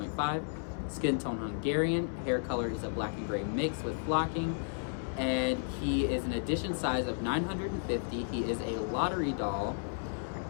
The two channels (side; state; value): right; silent; digital silence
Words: Skin tone Hungarian. Hair color is a black and gray mix with flocking. And he is an edition size of 950. He is a lottery doll.